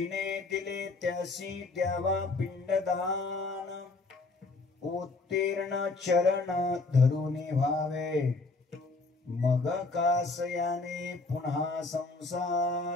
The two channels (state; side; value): quieter; right; 3.6 dB